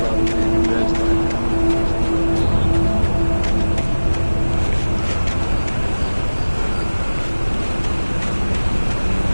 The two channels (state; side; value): inverted; both; correlation -1.00